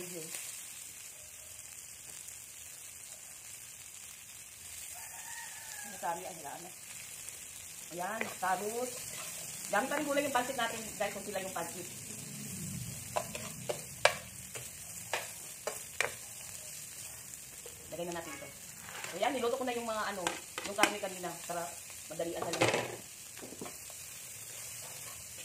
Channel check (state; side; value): identical; both; correlation 1.00